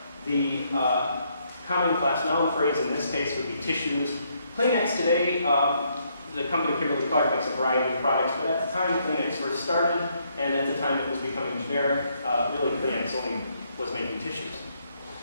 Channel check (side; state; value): both; inverted; correlation -0.73